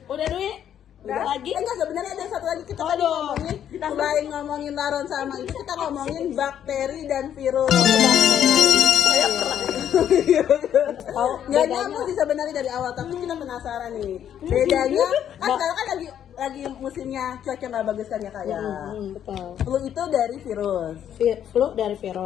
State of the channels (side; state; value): right; quieter; 9.8 dB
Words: Udah Dwi? Udah lagi? Enggak, sebenarnya ada satu lagi kita tadi Aduh. ngomongin, selain ngomongin laron sama itu kita ngomongin bakteri dan virus. Saya pernah Tahu Nggak bedanya? nyambung sih sebenarnya dari awal, tapi kita penasaran nih. Bedanya kan sekarang kan lagi musimnya cuaca nggak bagus kan ya kayak. Betul. Flu itu dari virus. Flu dari